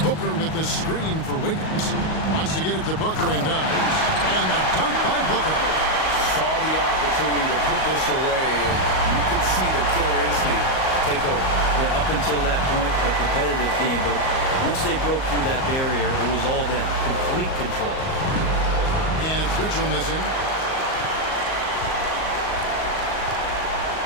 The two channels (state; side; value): late; right; 38 ms